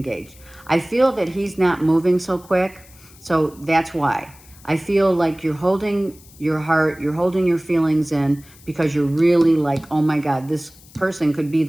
I feel that he's not moving so quick. So that's why. I feel like you're holding your heart, you're holding your feelings in because you're really like, oh my God, this person could be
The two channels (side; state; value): left; noise; hiss, 24 dB below the sound